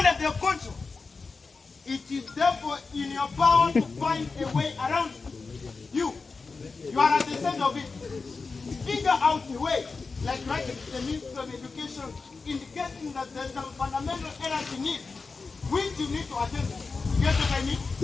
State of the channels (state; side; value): quieter; right; 4.3 dB